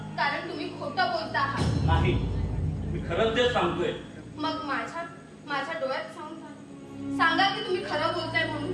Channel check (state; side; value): identical; both; correlation 1.00